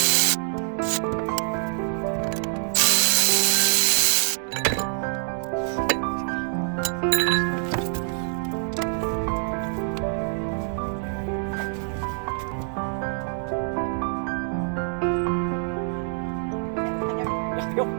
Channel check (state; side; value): silent; left; 62 dB below the other